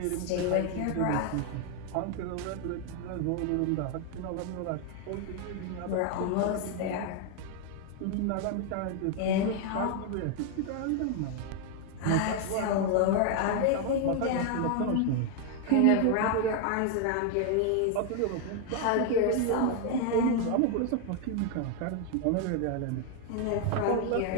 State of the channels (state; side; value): different; both; correlation 0.01